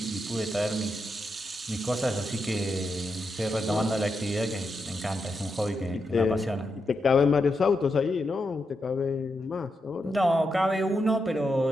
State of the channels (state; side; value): normal; both; correlation 0.85